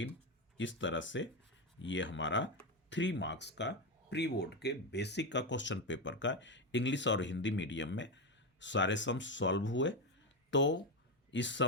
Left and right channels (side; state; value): both; normal; correlation 0.11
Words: इस तरह से ये हमारा 3 मार्क्स का प्री बोर्ड के बेसिक का क्वेश्चन पेपर का इंग्लिश और हिंदी मीडियम में सारे सम्स सॉल्व हुए। तो इस